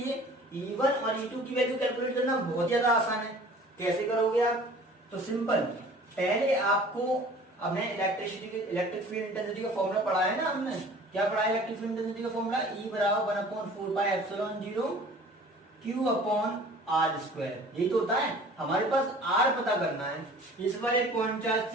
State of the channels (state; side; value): normal; both; correlation 0.47